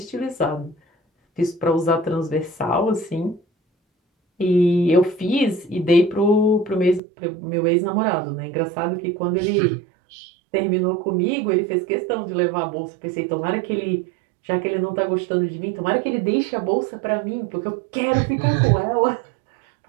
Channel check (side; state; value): left; drops out; at 7.0 s